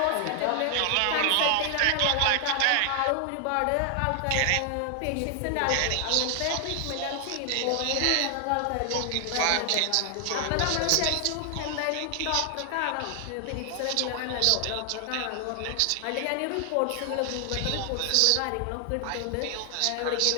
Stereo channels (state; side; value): different; both; correlation 0.00